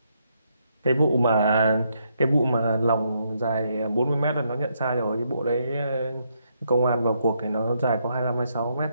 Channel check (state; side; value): inverted; both; correlation -0.76